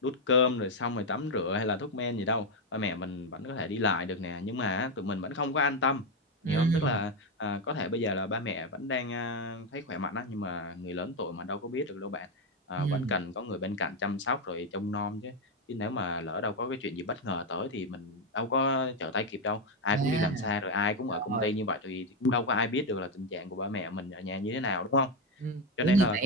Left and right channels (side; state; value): both; normal; correlation 0.07